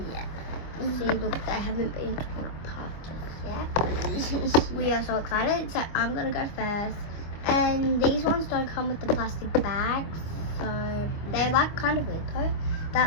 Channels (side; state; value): right; late; 25 ms